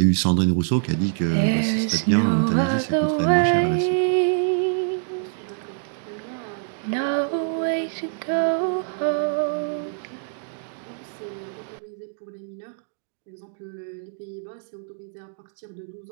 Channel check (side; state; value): left; silent; digital silence